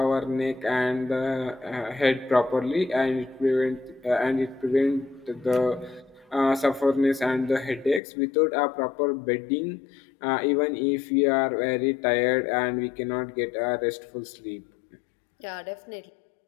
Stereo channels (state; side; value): drops out; right; at 8.0 s